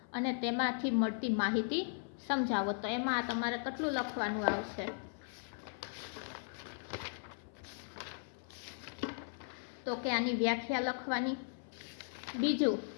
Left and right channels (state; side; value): silent; right; 53 dB below the other